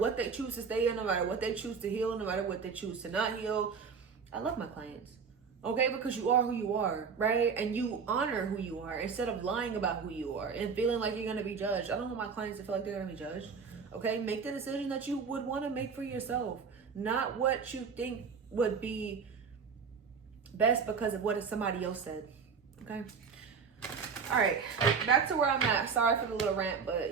they choose to stay in, no matter what they choose to heal, no matter what they choose to not heal. I love my clients. Okay, because you are who you are, right? And you honor who you are instead of lying about who you are and feeling like you're going to be judged. I don't want my clients to feel like they're going to be judged. Okay, make the decision that you would want to make for yourself, not what you think would be best because of what somebody else said. Okay. All right, back to where I'm at. Sorry for the little rant,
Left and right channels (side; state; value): left; quieter; 5.8 dB